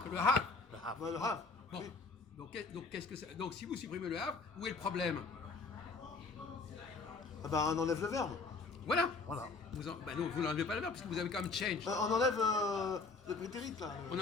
Le have. Le have. Bah, le have. Bon. Oui. Donc, qu'est-ce que ça... Donc si vous supprimez le have, où est le problème? Ah bah on enlève le verbe. Voilà. Voilà. Bah non, vous n'enlevez pas le verbe parce que vous avez quand même change. On enlève le prétérite là. On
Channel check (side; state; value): right; quieter; 4.1 dB